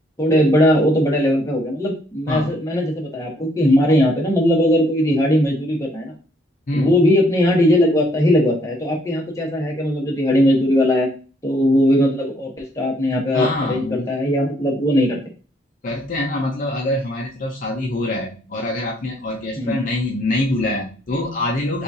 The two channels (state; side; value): normal; both; correlation 0.67